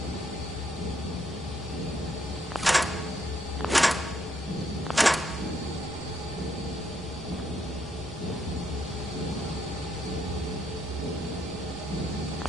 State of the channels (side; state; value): both; normal; correlation 0.74